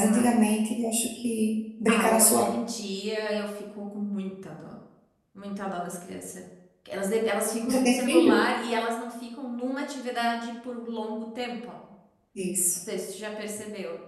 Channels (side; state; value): both; identical; correlation 1.00